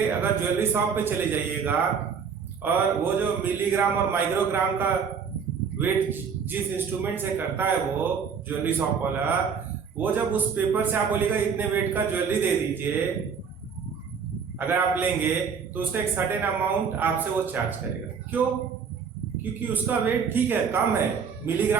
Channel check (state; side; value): quieter; left; 6.4 dB